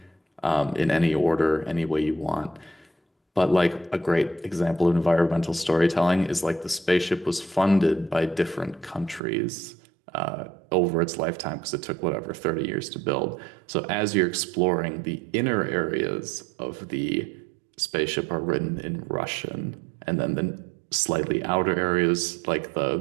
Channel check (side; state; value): left; drops out; at 9.2 s